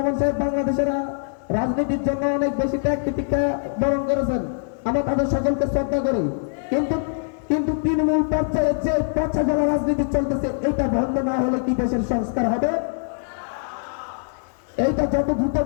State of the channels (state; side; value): silent; right; digital silence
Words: সাহেব বাংলাদেশের রাজনীতির জন্য অনেক বেশি ত্যাগ প্রতিজ্ঞা বরণ করেছেন, আমরা তাদের সকলকে শ্রদ্ধা করি। কিন্তু কিন্তু তৃণমূল পর্যায়ে যে পচা গলা রাজনীতি চলতেছে, এটা বন্ধ না হলে কি দেশের সংস্কার হবে? এইটা যত দ্রুত